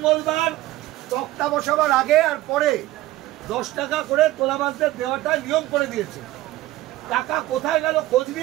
তক্তা বসাবার আগে আর পরে 10 টাকা করে তোলাবাজদের দেওয়াটা নিয়ম করে দিয়েছে। টাকা কোথায় গেল খোঁজ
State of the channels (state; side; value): quieter; left; 16.5 dB